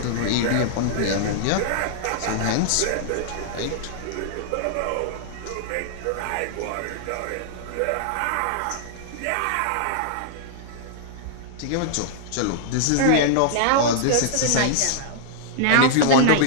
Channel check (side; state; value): both; different; correlation -0.01